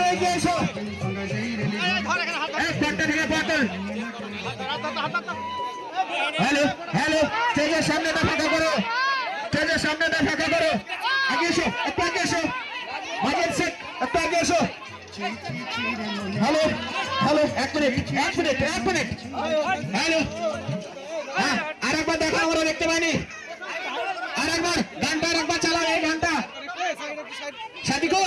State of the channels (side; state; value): both; identical; correlation 1.00